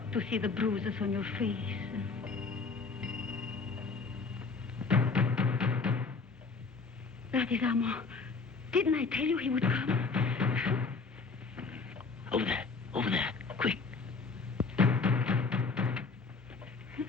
to see the bruises on your face. That is Armand. Didn't I tell you he would come? Over there, quick.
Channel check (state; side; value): quieter; right; 4.4 dB